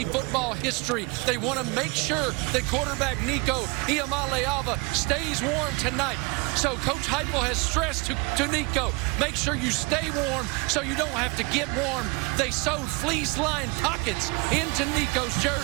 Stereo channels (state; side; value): quieter; left; 28.1 dB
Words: football history. They want to make sure that quarterback Nico Iamaleava stays warm tonight. So Coach Heupel has stressed to Nico, make sure you stay warm so you don't have to get warm. They sewed fleece-lined pockets into Nico's